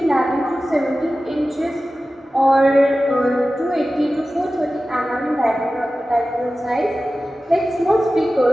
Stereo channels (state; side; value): normal; both; correlation 0.95